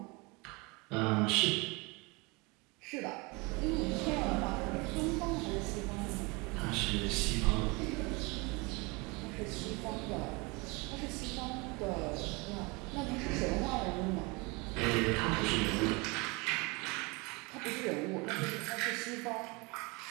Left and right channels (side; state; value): left; quieter; 27.1 dB